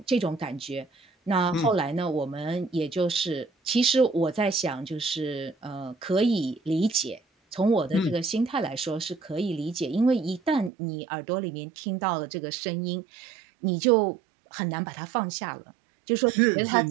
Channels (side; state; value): left; drops out; at 10.7 s